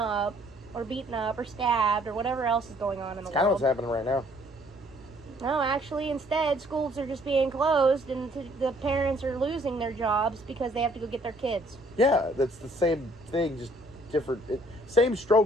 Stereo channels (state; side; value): normal; both; correlation 0.62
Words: or beaten up or stabbed or whatever else is going on in the world. That's kind of what's happening right now. No, actually, instead, schools are just being closed, and the parents are losing their jobs because they have to go get their kids. Yeah, that's the same thing, just different. Same